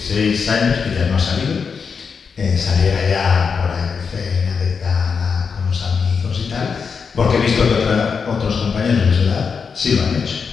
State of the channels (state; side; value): quieter; right; 5.8 dB